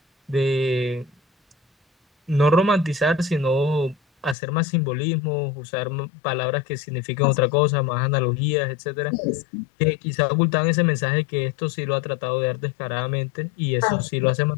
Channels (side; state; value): right; drops out; at 4.4 s